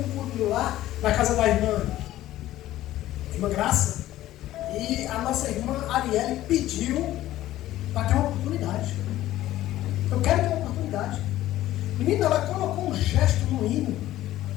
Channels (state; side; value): quieter; right; 14.5 dB